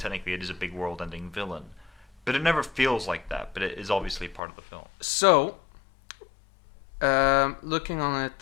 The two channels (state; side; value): drops out; right; at 4.4 s